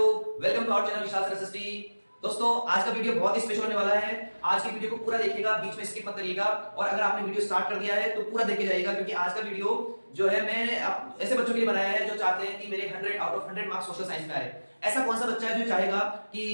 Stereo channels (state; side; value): inverted; both; correlation -1.00